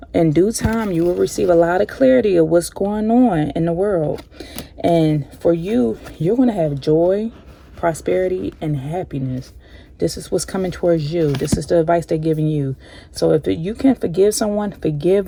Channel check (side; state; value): both; identical; correlation 1.00